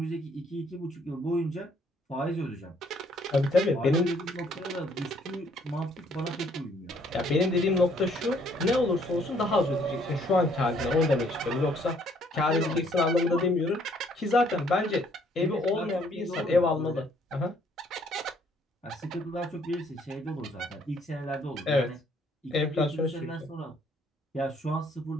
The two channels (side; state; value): both; normal; correlation 0.65